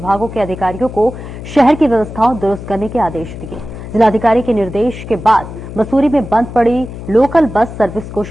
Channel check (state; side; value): noise; left; hum, 11 dB below the sound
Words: के अधिकारियों को शहर की व्यवस्थाओं दुरुस्त करने के आदेश दिए। जिलाधिकारी के निर्देश के बाद मसूरी में बंद पड़ी लोकल बस सर्विस को